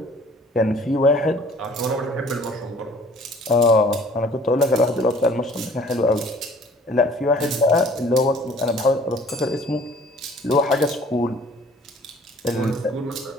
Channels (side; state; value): both; normal; correlation 0.53